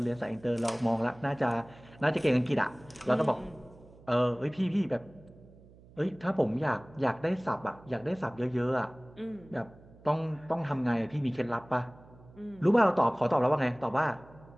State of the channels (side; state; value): right; noise; hum, 23 dB below the sound